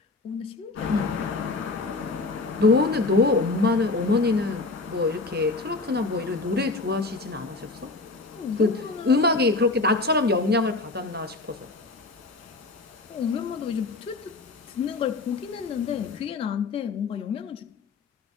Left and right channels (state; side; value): quieter; right; 3.5 dB